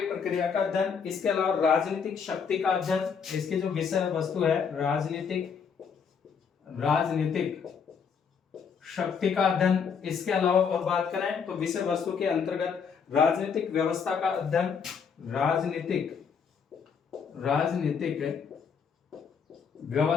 प्रक्रिया का अध्ययन। इसके अलावा राजनीतिक शक्ति का अध्ययन, इसकी जो विषय वस्तु है राजनीतिक शक्ति का अध्ययन। इसके अलावा और बात करें तो विषय वस्तु के अंतर्गत राजनीतिक व्यवस्था का अध्ययन, राजनीतिक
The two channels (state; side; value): quieter; right; 6.4 dB